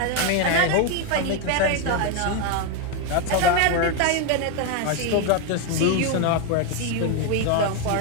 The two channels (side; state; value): both; different; correlation 0.02